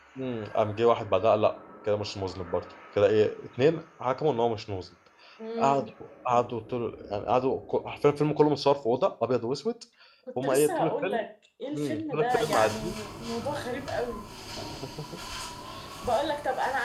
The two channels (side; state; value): both; identical; correlation 1.00